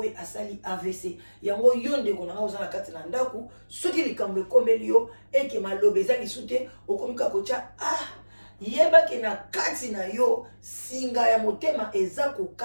asali AVC yango yo ndeko nanga oza na kati na ndaku soki likambo ekomeli yo eke malobe eza lisu te okomi kaka kotya yebaki na kati na yo singa ya motema eza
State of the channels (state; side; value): inverted; both; correlation -1.00